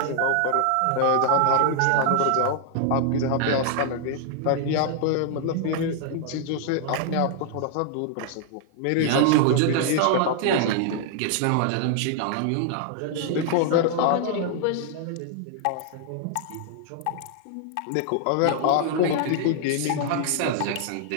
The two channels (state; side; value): different; both; correlation -0.01